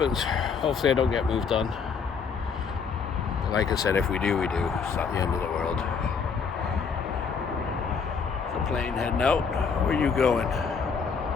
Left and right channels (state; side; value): quieter; right; 5.8 dB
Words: Hopefully I don't get moved on. But like I said, if we do, we do. It's not the end of the world. The plane heading out. Where are you going?